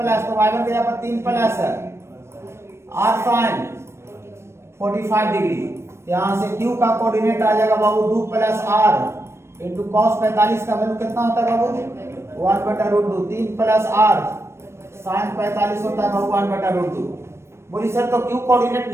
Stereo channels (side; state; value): left; late; 0.13 ms